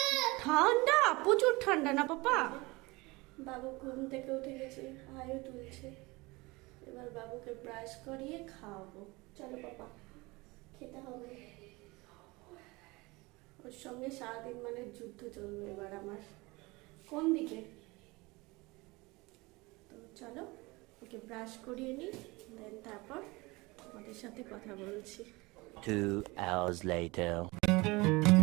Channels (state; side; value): quieter; left; 23.5 dB